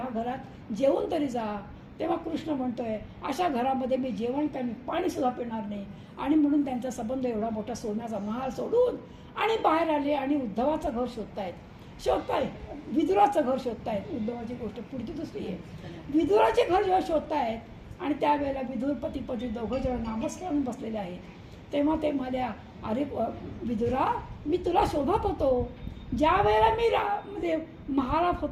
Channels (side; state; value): both; identical; correlation 1.00